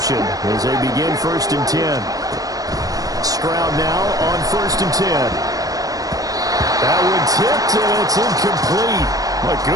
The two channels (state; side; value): late; left; 0.18 ms